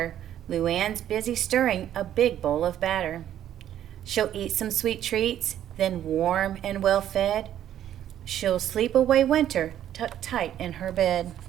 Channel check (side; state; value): left; quieter; 11.1 dB